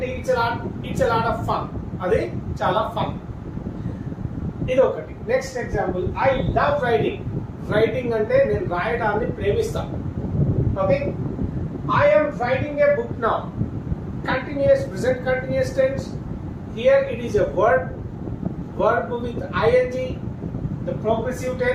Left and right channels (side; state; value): both; identical; correlation 1.00